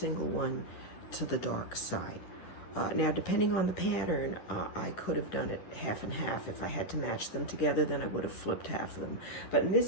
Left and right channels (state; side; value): late; right; 10 ms